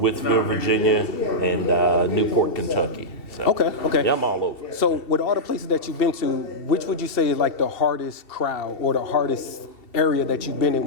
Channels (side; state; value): right; late; 2.7 ms